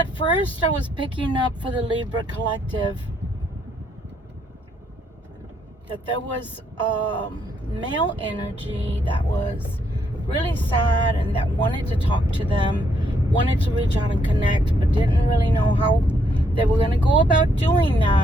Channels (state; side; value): normal; both; correlation 0.73